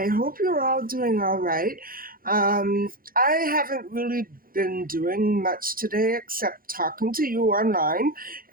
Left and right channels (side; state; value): left; late; 0.42 ms